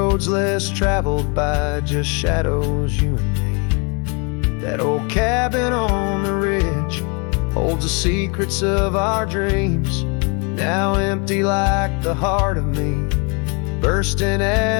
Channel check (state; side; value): quieter; right; 33.8 dB